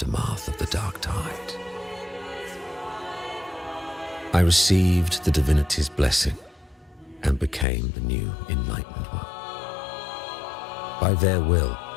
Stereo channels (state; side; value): drops out; right; at 7.7 s